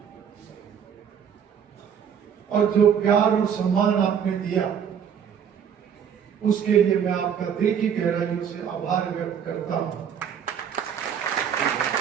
और जो प्यार और सम्मान आपने दिया, उसके लिए मैं आपका दिल की गहराइयों से आभार व्यक्त करता हूं।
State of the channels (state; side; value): quieter; left; 7.9 dB